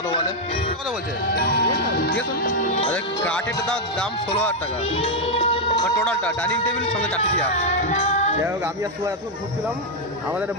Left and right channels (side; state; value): both; normal; correlation 0.00